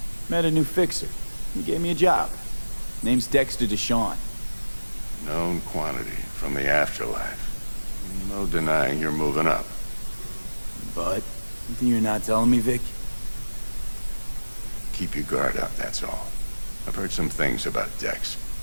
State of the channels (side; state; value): both; inverted; correlation -1.00